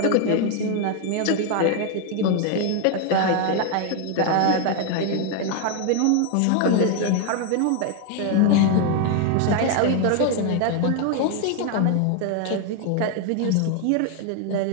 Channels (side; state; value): both; different; correlation 0.00